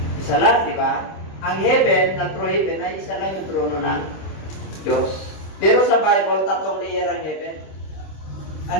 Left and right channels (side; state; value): right; late; 26 ms